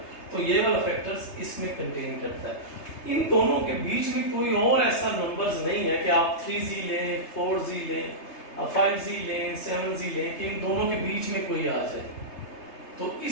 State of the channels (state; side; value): late; right; 3.3 ms